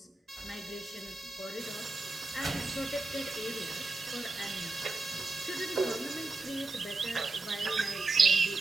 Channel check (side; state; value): left; quieter; 3.4 dB